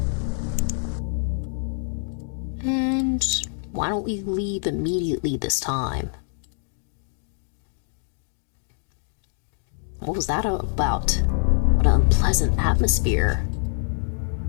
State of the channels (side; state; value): right; silent; 62 dB below the other